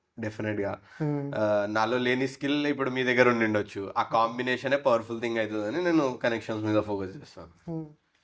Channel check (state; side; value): identical; both; correlation 1.00